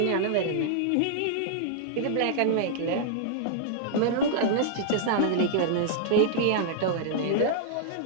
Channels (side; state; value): both; different; correlation -0.01